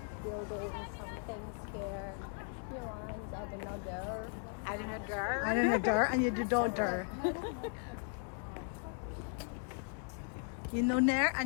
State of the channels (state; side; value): silent; right; 53 dB below the other